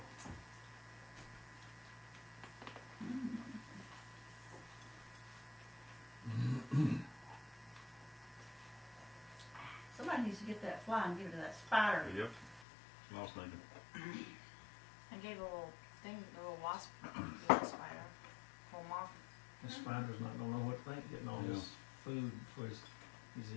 Somebody needs to get that fly and give it to that spider. Yep. Small snake. I gave a little thing, a little wasp, little spider. Pull them off. The spider's not gonna know what to think, getting all this food for his,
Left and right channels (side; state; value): right; drops out; at 12.7 s